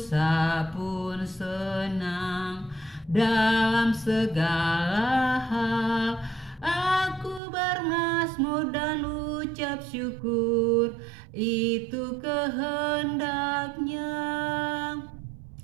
pun senang, dalam segala hal aku bermazmur dan ucap syukur, itu kehendaknya.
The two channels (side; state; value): left; drops out; at 7.4 s